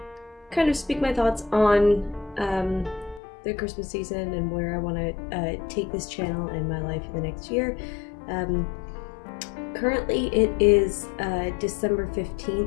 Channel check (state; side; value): drops out; right; at 3.2 s